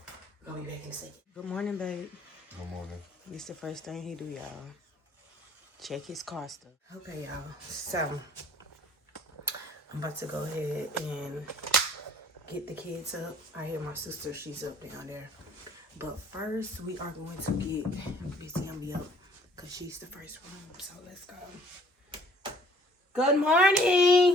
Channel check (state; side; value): normal; both; correlation 0.56